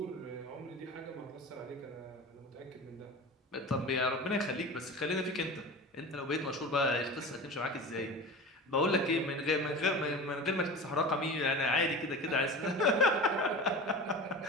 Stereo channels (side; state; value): both; normal; correlation 0.33